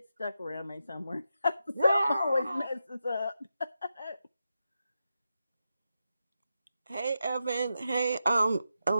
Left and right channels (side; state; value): both; inverted; correlation -0.88